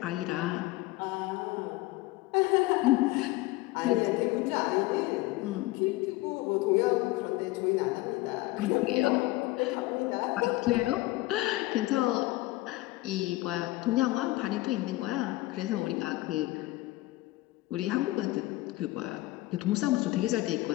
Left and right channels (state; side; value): quieter; right; 18.9 dB